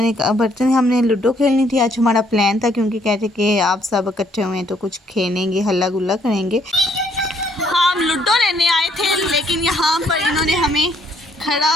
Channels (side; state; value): both; normal; correlation 0.67